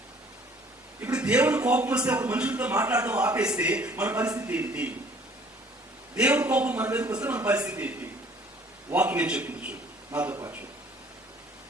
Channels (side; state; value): both; normal; correlation 0.55